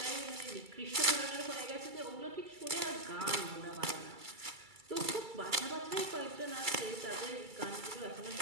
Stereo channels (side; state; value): left; late; 2.3 ms